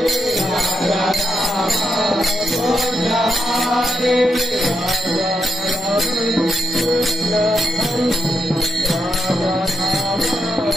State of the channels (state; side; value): normal; both; correlation 0.83